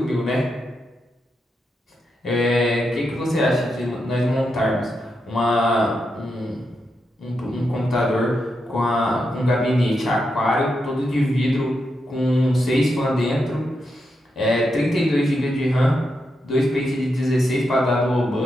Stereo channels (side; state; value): both; normal; correlation 0.85